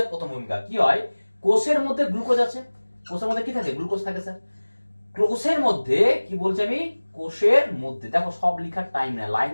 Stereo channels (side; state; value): both; inverted; correlation -1.00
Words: প্রথম ভূমিকা কি হয়? কোষের মধ্যে গ্লুকোজ আছে, কোষের মধ্যে কি থাকে? গ্লুকোজ থাকে স্যার। কোষের মধ্যে কি বলছি আমি? কোষের মধ্যে, দেখো সব লেখার টাইম না, লাইন